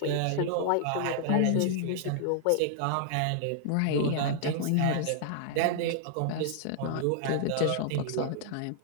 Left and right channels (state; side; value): different; both; correlation -0.01